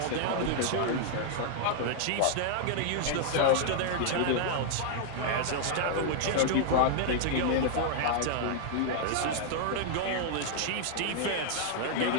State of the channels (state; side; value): different; both; correlation -0.01